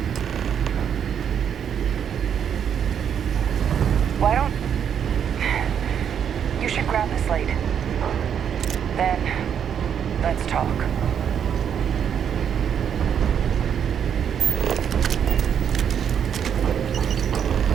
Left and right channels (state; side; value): quieter; left; 8.3 dB